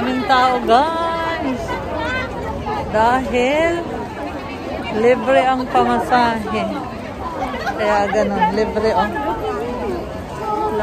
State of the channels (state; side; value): identical; both; correlation 1.00